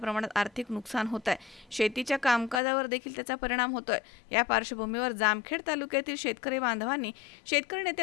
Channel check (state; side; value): drops out; right; at 2.6 s